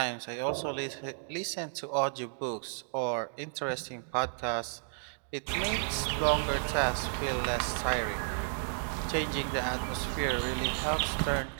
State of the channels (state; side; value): silent; left; digital silence